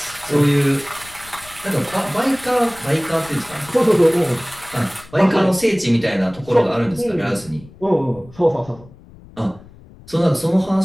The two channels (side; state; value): left; noise; rumble, 22 dB below the sound